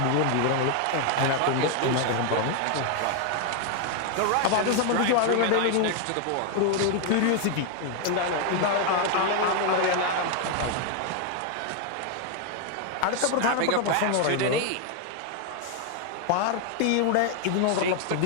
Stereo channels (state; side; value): different; both; correlation 0.01